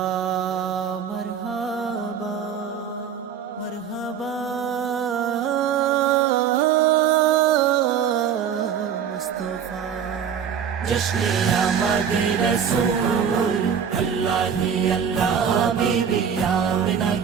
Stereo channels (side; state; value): left; quieter; 7.8 dB